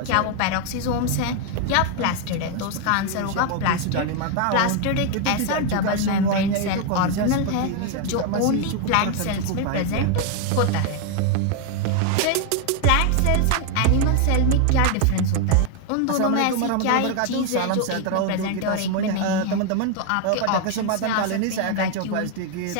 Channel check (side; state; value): both; different; correlation 0.01